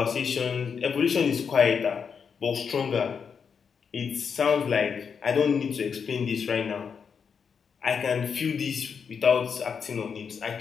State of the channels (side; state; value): right; quieter; 6.4 dB